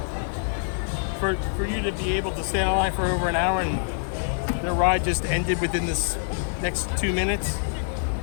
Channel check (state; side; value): silent; right; 61 dB below the other